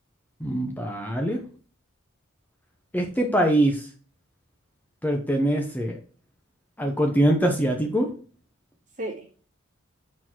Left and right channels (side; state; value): both; normal; correlation 0.77